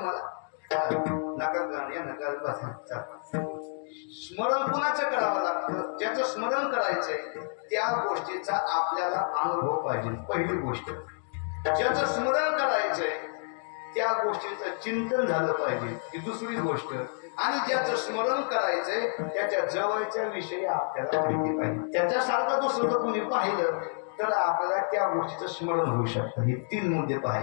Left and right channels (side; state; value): right; silent; digital silence